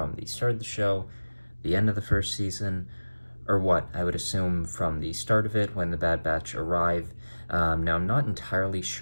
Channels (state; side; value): inverted; both; correlation -1.00